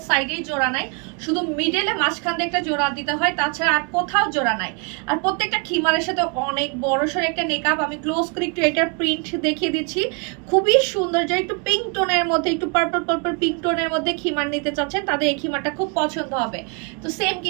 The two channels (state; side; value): quieter; left; 35.0 dB